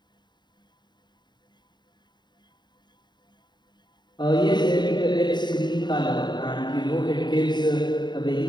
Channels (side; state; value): right; late; 0.21 ms